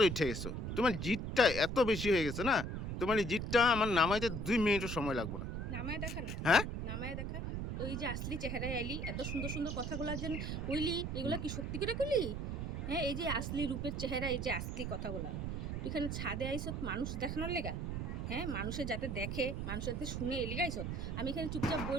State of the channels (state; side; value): noise; right; rumble, 3 dB below the sound